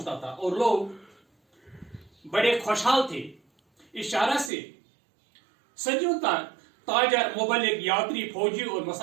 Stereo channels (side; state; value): left; drops out; at 4.5 s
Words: था और लोग बड़े खुशहाल थे। इस शाहरा से सदियों तक ताजर, मुबल्लिग, यात्री, फौजी और